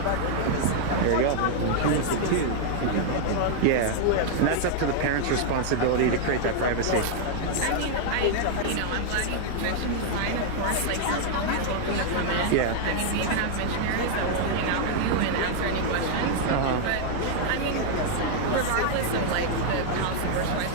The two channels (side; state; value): both; different; correlation 0.00